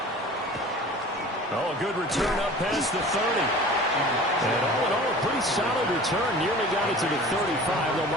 Oh, a good return up past the 30. And all in all, a pretty solid return. Nearly got it to the 35. They'll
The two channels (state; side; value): normal; both; correlation 0.42